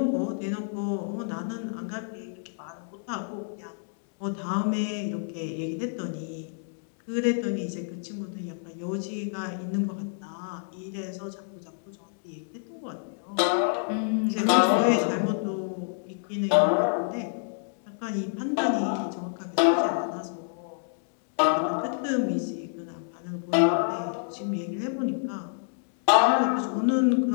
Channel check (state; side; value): silent; right; digital silence